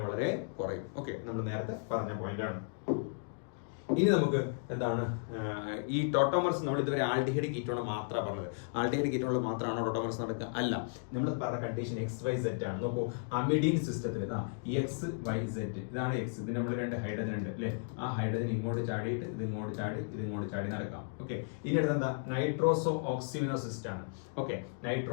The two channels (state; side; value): silent; right; digital silence